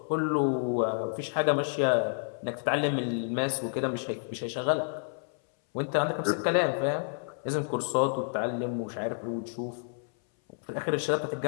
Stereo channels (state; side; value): silent; right; 58 dB below the other